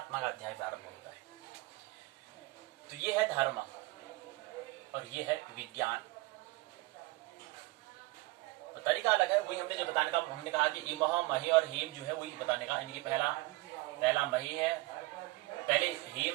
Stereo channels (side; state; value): left; quieter; 21.3 dB